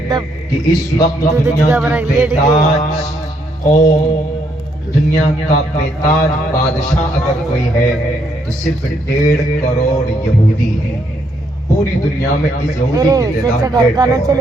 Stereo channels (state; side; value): normal; both; correlation 0.73